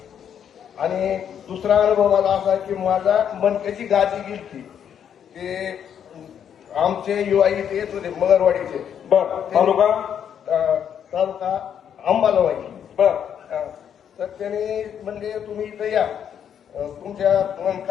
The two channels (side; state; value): right; quieter; 8.7 dB